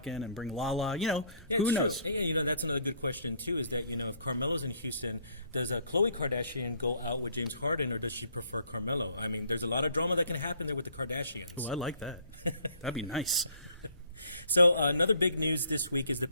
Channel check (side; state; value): both; inverted; correlation -0.61